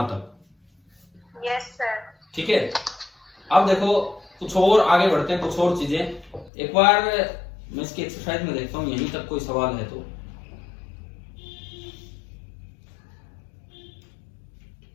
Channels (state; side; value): drops out; right; at 6.5 s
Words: तक? Yes sir. ठीक है। अब देखो कुछ और आगे बढ़ते हैं, कुछ और चीजें। एक बार मैं इसकी एक्सरसाइज में देखता हूँ यहीं तक कोई सवाल है तो।